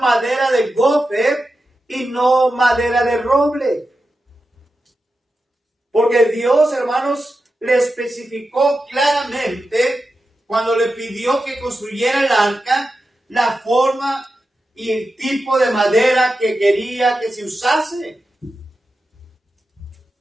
madera de gofer y no madera de roble. Porque Dios, hermanos, le especificó claramente cuando le pidió que construyera el arca, la forma y el tipo de madera que quería que se usase.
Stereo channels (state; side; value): normal; both; correlation 0.90